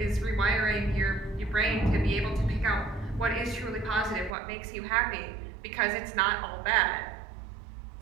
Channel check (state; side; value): drops out; left; at 4.4 s